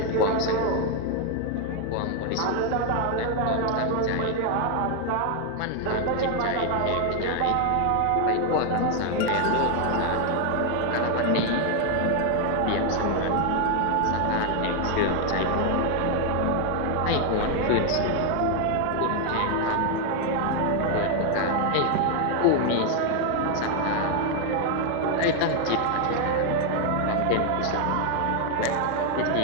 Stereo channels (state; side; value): different; both; correlation 0.00